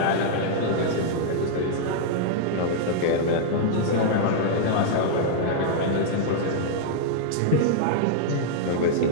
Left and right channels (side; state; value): both; different; correlation -0.01